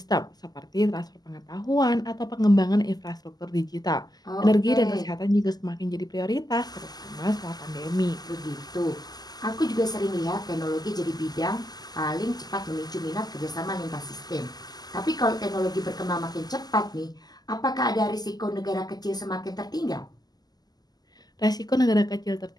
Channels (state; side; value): late; right; 0.19 ms